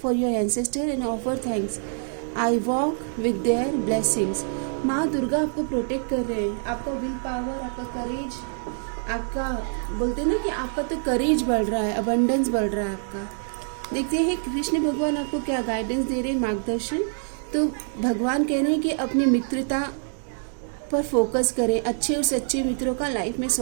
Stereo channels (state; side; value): silent; left; digital silence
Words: for your ancestor and offer thanks. I walk with their blessings. माँ दुर्गा आपको प्रोटेक्ट कर रहे हैं। आपका विल पावर, आपका करेज, आपका बोलते ना कि आपका तो करेज बढ़ रहा है, अबंडेंस बढ़ रहा है आपका। देखते हैं कृष्ण भगवान आपको क्या गाइडेंस दे रहे हैं, मार्गदर्शन। तो भगवान कह रहे हैं कि अपनी मित्रता पर फोकस करें, अच्छे और सच्चे मित्रों का लाइफ में